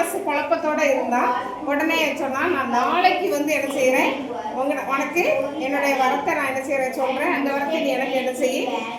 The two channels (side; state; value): both; identical; correlation 1.00